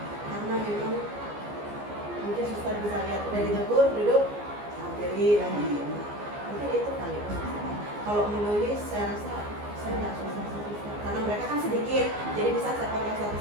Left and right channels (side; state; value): left; late; 14 ms